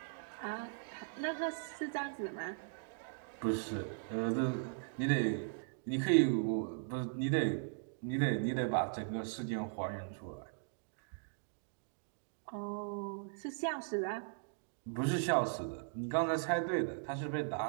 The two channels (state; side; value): silent; left; digital silence